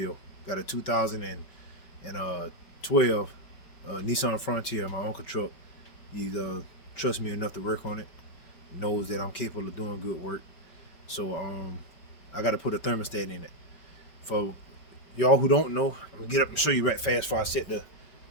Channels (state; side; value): late; right; 5.2 ms